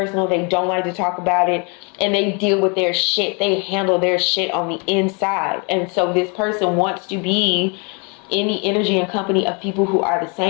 They don't like to talk about it. And they deal with their shit. They handle their shit on the inside. And so this person wants to be in the energy and company of people who are the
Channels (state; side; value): quieter; right; 33.9 dB